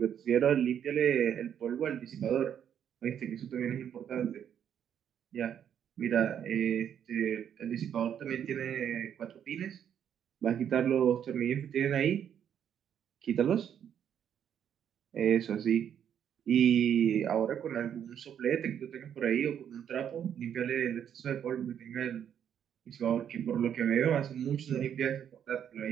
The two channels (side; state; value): left; quieter; 9.0 dB